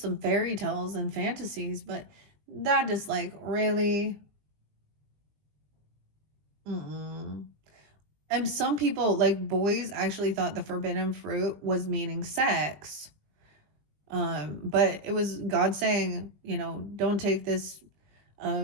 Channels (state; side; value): late; left; 20 ms